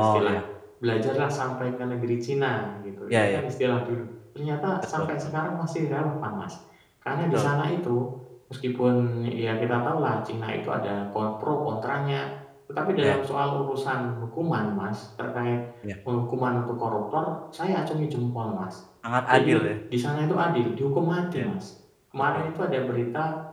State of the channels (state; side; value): identical; both; correlation 1.00